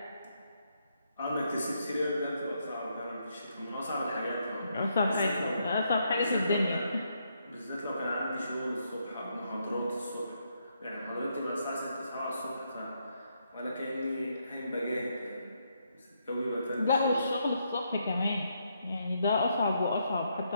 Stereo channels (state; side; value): inverted; both; correlation -0.77